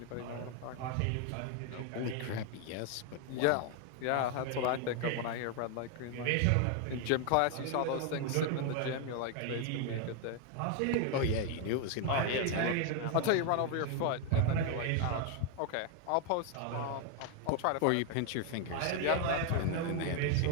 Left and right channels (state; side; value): different; both; correlation 0.01